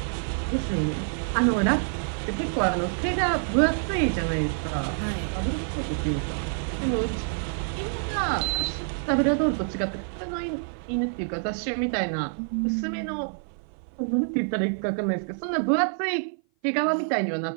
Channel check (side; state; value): left; silent; 56 dB below the other